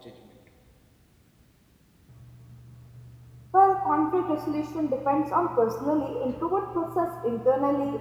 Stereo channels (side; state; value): both; identical; correlation 1.00